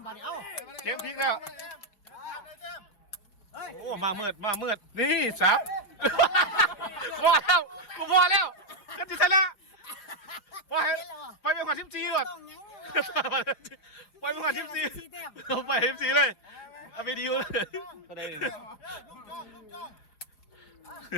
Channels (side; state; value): right; late; 5.2 ms